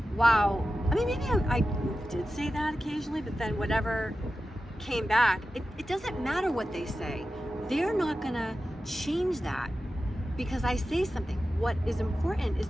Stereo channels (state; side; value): normal; both; correlation 0.93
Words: wow. I mean, maybe I did say that occasionally, but then whatever came back, it doesn't matter what they say. They're not going to change that because I say something. What is important is